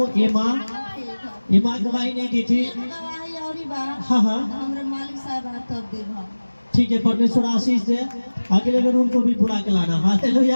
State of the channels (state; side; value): inverted; both; correlation -1.00